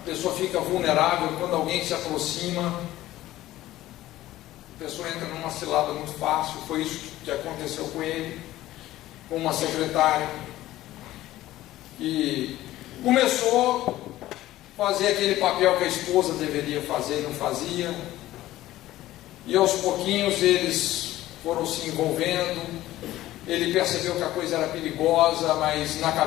pessoa fica vulnerável quando alguém se aproxima. A pessoa entra numa cilada muito fácil. Foi isso que aconteceu com ele, com uma secretária, e começou a fazer aquele papel que a esposa deveria fazer e não fazia, e aos pouquinhos eles foram se envolvendo. Ele percebeu que a coisa era perigosa, mas na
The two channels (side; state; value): right; quieter; 15.4 dB